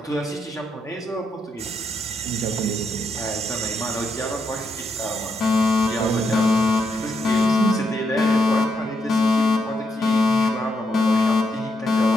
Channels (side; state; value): both; normal; correlation 0.80